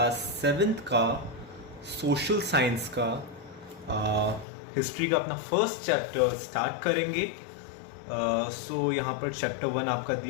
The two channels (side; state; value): right; drops out; at 4.5 s